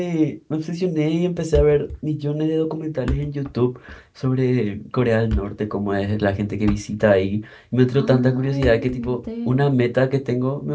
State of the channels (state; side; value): identical; both; correlation 1.00